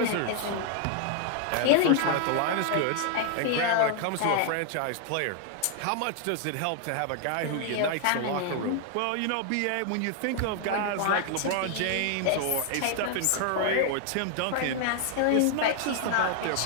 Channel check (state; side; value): different; both; correlation 0.00